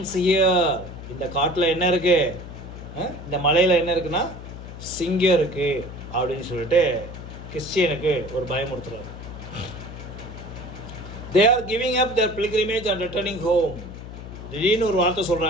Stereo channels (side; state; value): left; noise; hum, 12 dB below the sound